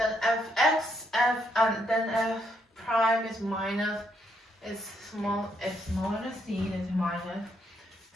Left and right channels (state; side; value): normal; both; correlation 0.75